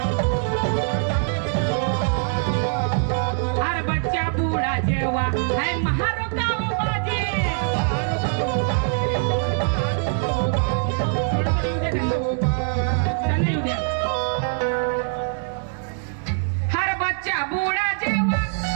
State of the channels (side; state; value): left; silent; 61 dB below the other